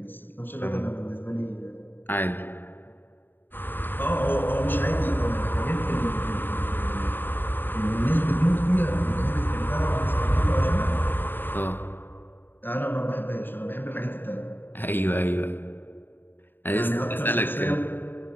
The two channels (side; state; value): right; late; 0.094 ms